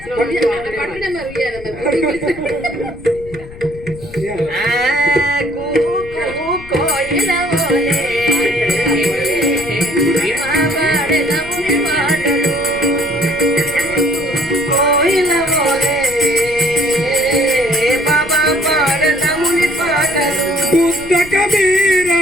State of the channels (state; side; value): noise; left; rumble, 16 dB below the sound